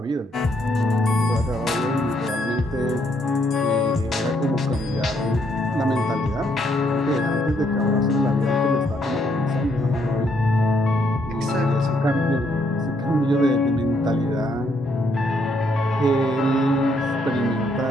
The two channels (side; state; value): both; normal; correlation 0.72